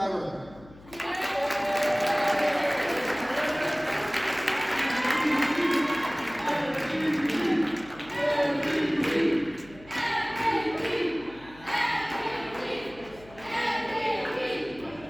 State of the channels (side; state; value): left; noise; hum, 22 dB below the sound